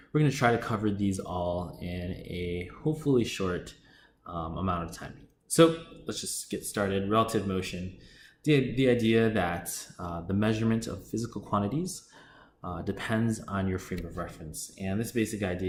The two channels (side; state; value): both; identical; correlation 1.00